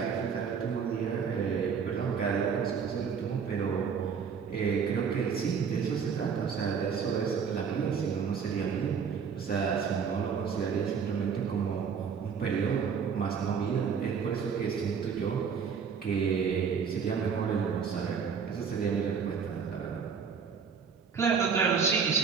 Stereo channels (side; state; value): left; quieter; 6.4 dB